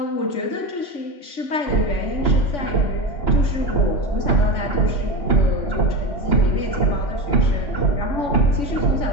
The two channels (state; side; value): late; right; 3.5 ms